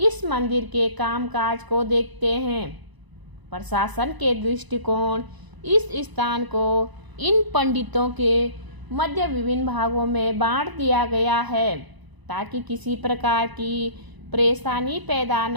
मंदिर के कामकाज को देखते हैं। प्रशासन के दृष्टिकोण इस स्थान को इन पंडितों के मध्य विभिन्न भागों में बांट दिया गया है, ताकि किसी प्रकार की परेशानी पैदा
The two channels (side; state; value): left; late; 1.0 ms